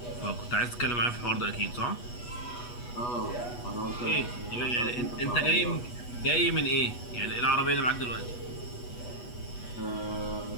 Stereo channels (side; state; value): right; late; 8.2 ms